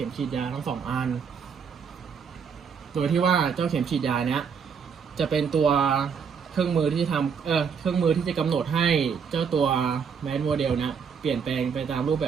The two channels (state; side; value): quieter; left; 6.5 dB